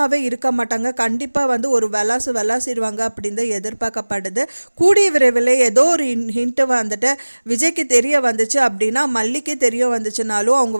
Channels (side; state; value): both; inverted; correlation -1.00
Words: இருக்க மாட்டாங்க. கண்டிப்பாக வந்து ஒரு விளாசிடுவாங்க அப்படின்னு தான் எதிர்பார்க்கப்படுது. கூடிய விரைவில் ஏதோ ஒரு ஹிண்ட்டு வந்துட்டு விஜய்க்கு தெரிய வந்துச்சு அப்படின்னா மல்லிக்கு தெரிய வந்துச்சுனாலும் அவங்க